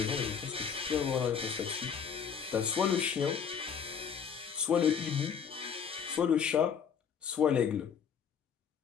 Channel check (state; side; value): quieter; right; 7.1 dB